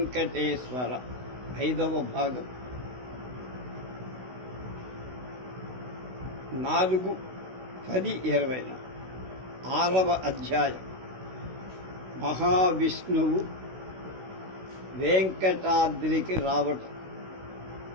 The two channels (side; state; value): left; late; 16 ms